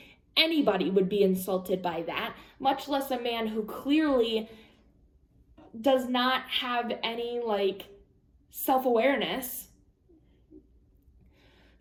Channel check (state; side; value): identical; both; correlation 1.00